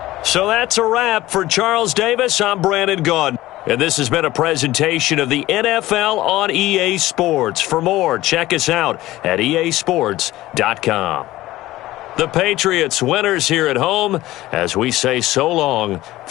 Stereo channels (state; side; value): quieter; right; 16.6 dB